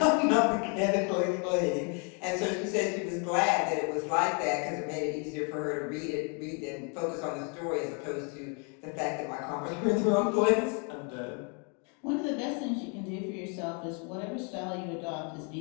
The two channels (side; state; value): right; quieter; 37.6 dB